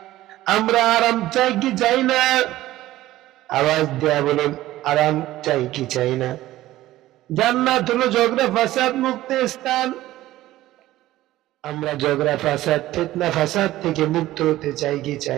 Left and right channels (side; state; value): left; quieter; 15.6 dB